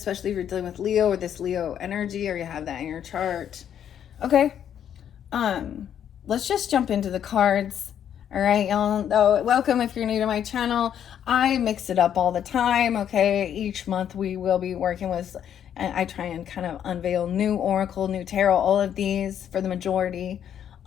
if you're dealing with Leo or this Leo energy or you have that in your chart. Okay. Let's just jump into the cards. All right, y'all. Oh, welcome if you're new to my channel. I mix it up all the time. Okay. Each month we will be working with, and I try and kind of unveil new oracle, new tarot, all of these for the majority.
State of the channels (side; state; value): right; quieter; 9.4 dB